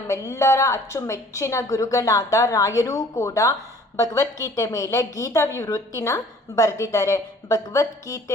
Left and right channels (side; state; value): both; normal; correlation 0.53